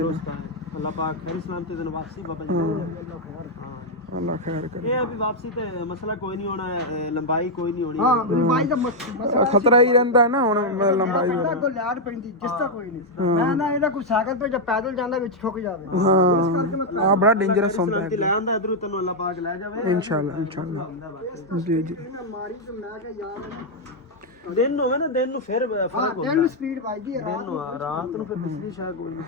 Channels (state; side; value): normal; both; correlation -0.02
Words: ਦੋਸਤ ਅੱਲਾਹ ਪਾਕ ਖੈਰ ਸਲਾਮਤ ਦਿਨ ਵਾਪਸੀ ਬਾਬਾ ਜੀ ਅੱਲਾ ਖੈਰ ਕਰੇ ਇਹ ਅਭੀ ਵਾਪਸੀ ਤੇ ਮਸਲਾ ਕੋਈ ਨਹੀਂ ਹੋਣਾ ਲੰਬਾਈ ਕੋਈ ਨਹੀਂ ਹੋਣੀ ਹਾਂ ਲੰਬਾਈ ਦਾ ਮਸਲਾ ਖਤਰਾ ਹੀ ਰਹਿੰਦਾ ਨਾ ਹੁਣ ਲੰਬਾਈ ਦਾ ਕੋਈ ਲਿਆੜ ਪੈਂਦੀ ਜਿਸ ਦਾ ਕੋਈ ਨਹੀਂ ਮੈਂ ਨਾ ਇਹਦਾ ਕੋਈ ਸਾਈਕਲ ਤੇ ਜਾਂ ਪੈਦਲ ਜਾਂਦਾ ਵਿੱਚ ਠੁੱਕ ਜਾਵੇ ਹਾਂ ਆ ਬੜਾ ਡੇਂਜਰਸ ਹੁੰਦਾ ਹੈ ਲੈ ਆਂਦਾ ਇਧਰੋਂ ਤੈਨੂੰ ਅੱਲਾਹ ਪਾਕ ਲੈ ਜਾਵੇ ਇਨਸ਼ਾਅੱਲਾ ਜੀ ਮਾਰੀ ਤੇ ਮੈਂ ਕਿ ਯਾਰ ਦਿਨ ਹੋਵੇ ਨਾ ਦਿਨ ਨੂੰ ਫਿਰ ਫਰਕ ਹੁੰਦਾ ਦਿਨ ਸਪੀਡ ਵੱਜਦੀ ਹੈ ਦਿਨ ਨੂੰ ਰਾਤ ਨੂੰ ਫਿਰ ਬਿਜਲੀ ਸ਼ਾਇਦ ਕੋਈ ਨਹੀਂ